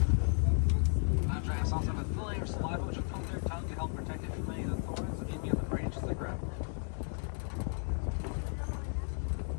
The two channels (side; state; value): right; silent; 55 dB below the other